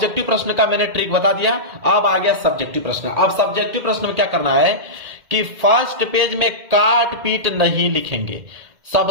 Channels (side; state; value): left; late; 2.1 ms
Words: प्रश्न का मैंने ट्रिक बता दिया। अब आ गया सब्जेक्टिव प्रश्न। अब सब्जेक्टिव प्रश्न में क्या करना है कि फर्स्ट पेज में काट पीट नहीं लिखेंगे।